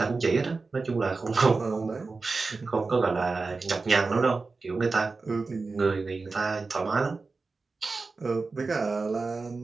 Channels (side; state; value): left; quieter; 4.0 dB